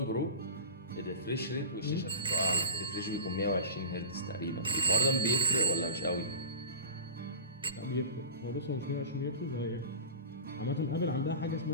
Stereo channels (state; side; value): inverted; both; correlation -0.33